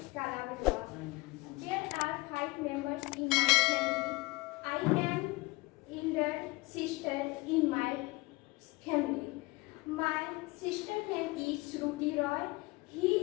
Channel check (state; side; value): quieter; right; 23.2 dB